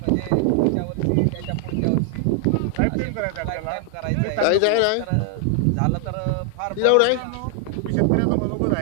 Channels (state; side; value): different; both; correlation 0.00